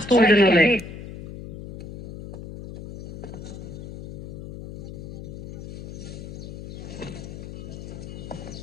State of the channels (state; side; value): noise; left; hum, 10 dB below the sound